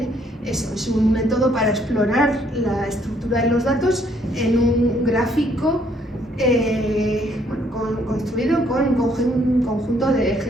Eso es un método para explorar la estructura de los datos en un gráfico construido con un conjunto de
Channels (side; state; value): both; normal; correlation 0.67